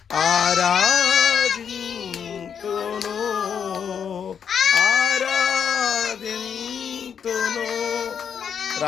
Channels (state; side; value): quieter; right; 7.5 dB